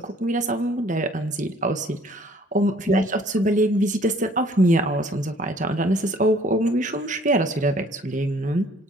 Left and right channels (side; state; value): both; normal; correlation 0.57